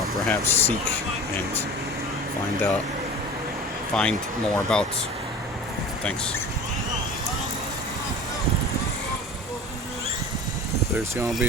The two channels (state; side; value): normal; both; correlation 0.39